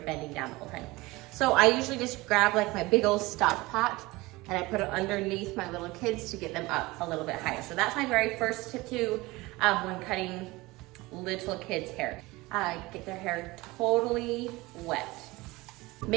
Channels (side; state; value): left; quieter; 21.3 dB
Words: down the whole time. So I usually just grab like my big old stock pot and I put it underneath my little kids to get them up a little bit higher. So that's my very first tip too when cutting little kids' hair. Get their hair totally wet.